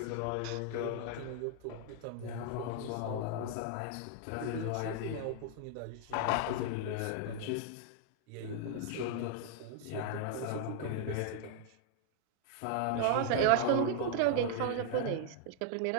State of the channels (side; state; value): both; different; correlation 0.00